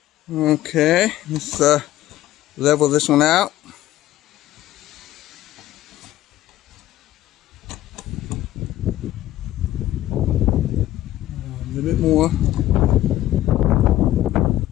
Okay, let's level this one out. A little bit more.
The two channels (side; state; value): right; quieter; 14.3 dB